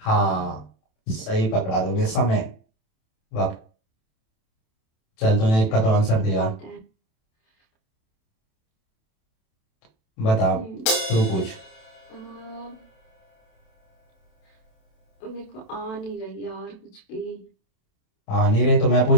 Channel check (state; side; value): late; right; 27 ms